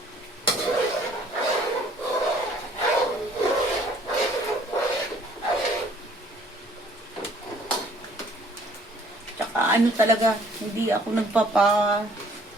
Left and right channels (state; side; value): normal; both; correlation 0.58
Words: Ano talaga, hindi ako